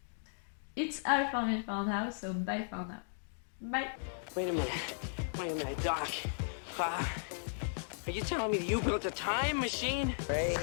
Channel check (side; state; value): right; silent; digital silence